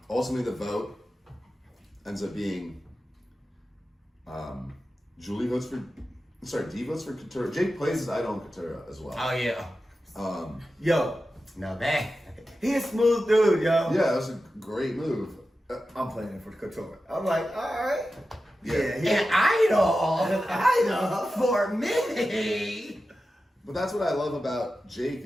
ultimately the vote ends up being D votes for Couture. Jake plays as Idol and Couture as well. Oh, yeah. Yo. Now that. He a smooth dude, yo. Yeah, that was a great move. I'm playing it for Couture. I'm like, all right. Yeah. An idol for me. But that's what I love about Jake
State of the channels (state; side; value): normal; both; correlation 0.92